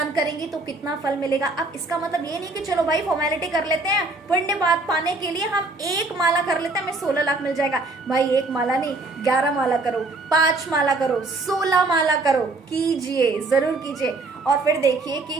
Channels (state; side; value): quieter; left; 3.2 dB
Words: करेंगे तो कितना फल मिलेगा। अब इसका मतलब ये नहीं कि चलो भाई फॉर्मेलिटी कर लेते हैं, पुण्य बात पाने के लिए हम एक माला कर लेते हैं, हमें 16 लाख मिल जाएगा। भाई एक माला नहीं, 11 माला करो, 5 माला करो, 16 माला करो, कीजिए, जरूर कीजिए। और फिर देखिए